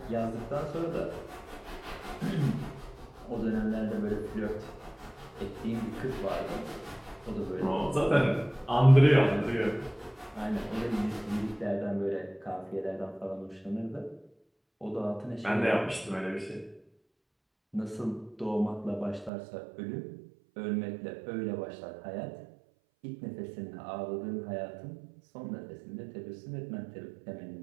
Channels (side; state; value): left; drops out; at 19.3 s